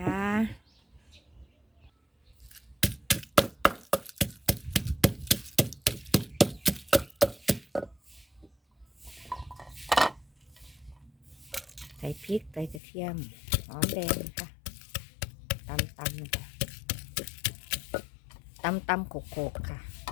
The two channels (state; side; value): drops out; right; at 12.8 s